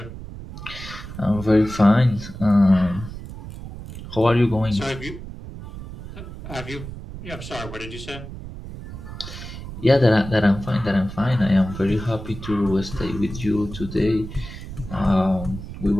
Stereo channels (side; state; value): right; noise; rumble, 12 dB below the sound